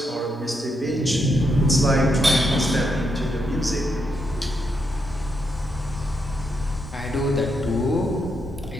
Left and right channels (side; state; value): both; normal; correlation 0.81